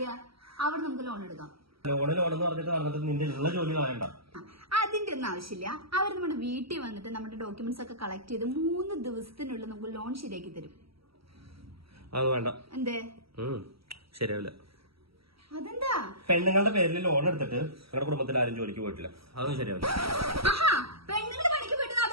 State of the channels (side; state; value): left; late; 0.75 ms